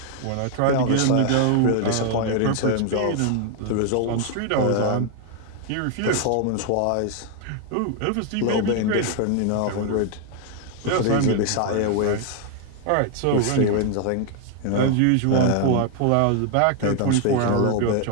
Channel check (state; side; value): different; both; correlation 0.00